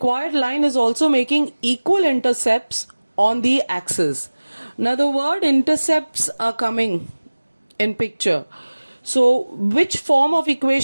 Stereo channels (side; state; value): both; inverted; correlation -1.00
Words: line is also making equal intercepts on the axis. Now the word intercepts are coming in picture. So which form of